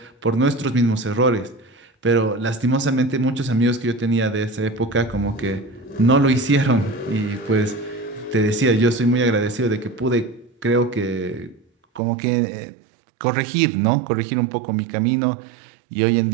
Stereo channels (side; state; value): left; drops out; at 12.0 s